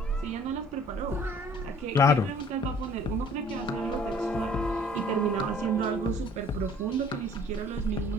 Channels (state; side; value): normal; both; correlation 0.54